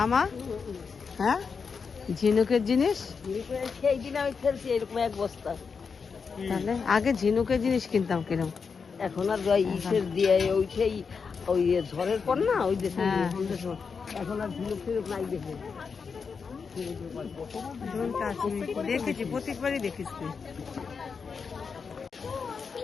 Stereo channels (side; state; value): right; quieter; 5.5 dB